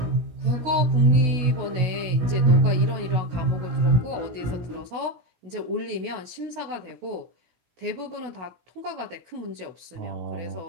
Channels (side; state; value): left; late; 16 ms